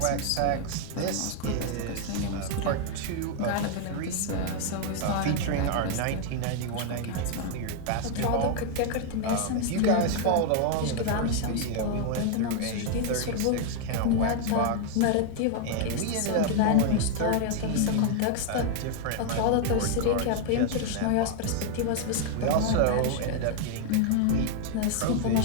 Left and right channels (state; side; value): different; both; correlation 0.00